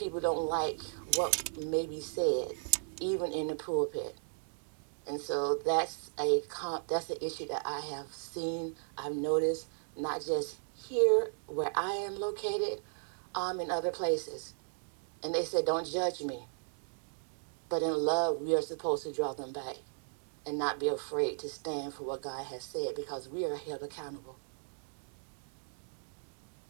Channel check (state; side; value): silent; left; digital silence